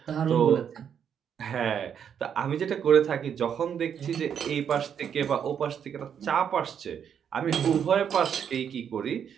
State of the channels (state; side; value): quieter; left; 8.2 dB